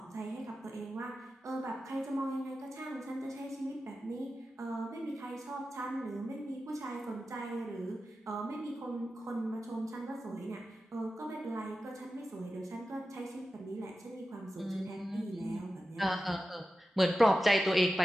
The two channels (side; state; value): both; normal; correlation 0.93